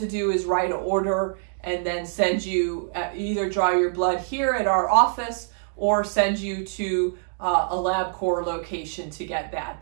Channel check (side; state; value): left; silent; digital silence